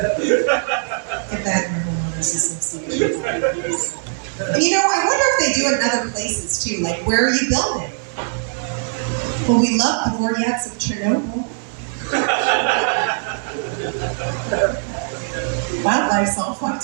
that in the homeowners association. And you know, I wonder if they do it in other places too. Like, where are you building? Well, we love the Vortex of Chernobyl. Wildlife's all fucked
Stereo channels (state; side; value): silent; left; 58 dB below the other